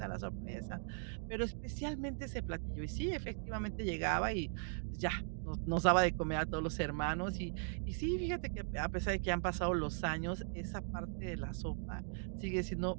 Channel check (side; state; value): left; silent; digital silence